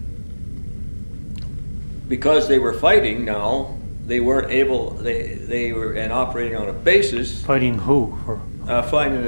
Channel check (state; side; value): inverted; both; correlation -1.00